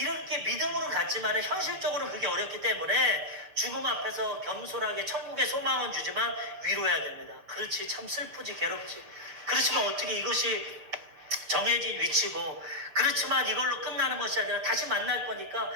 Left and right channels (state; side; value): late; left; 7.0 ms